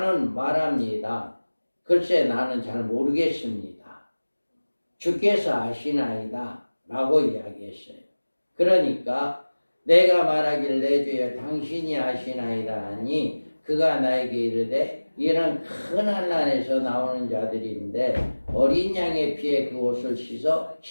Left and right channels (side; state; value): both; inverted; correlation -1.00